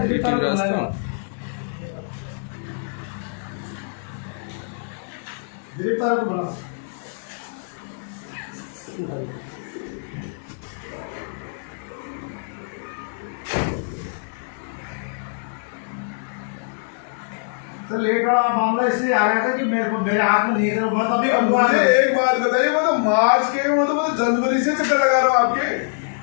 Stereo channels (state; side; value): silent; right; digital silence